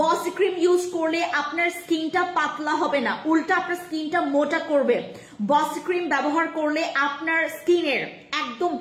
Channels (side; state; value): both; identical; correlation 1.00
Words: বসি ক্রিম ইউজ করলে আপনার স্কিনটা পাতলা হবে না, উল্টা আপনার স্কিনটা মোটা করবে। বসি ক্রিম ব্যবহার করলে আপনার স্কিনের একদম